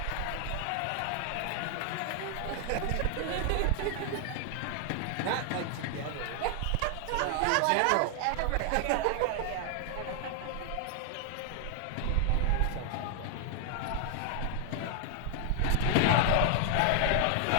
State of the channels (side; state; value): both; different; correlation 0.00